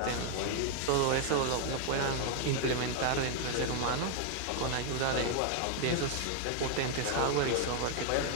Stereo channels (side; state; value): both; different; correlation 0.00